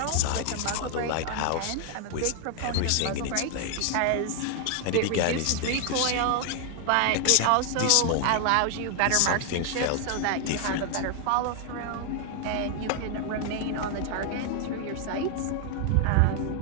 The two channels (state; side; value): different; both; correlation 0.00